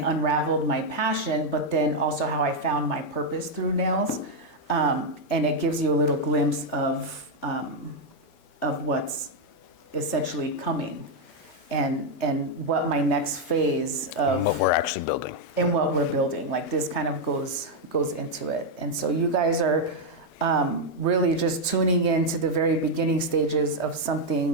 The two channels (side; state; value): right; late; 5.6 ms